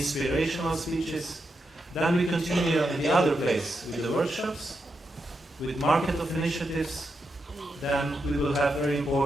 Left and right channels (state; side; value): normal; both; correlation 0.85